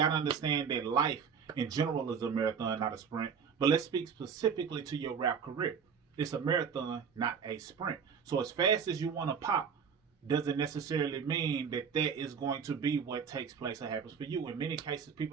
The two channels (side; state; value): left; quieter; 6.6 dB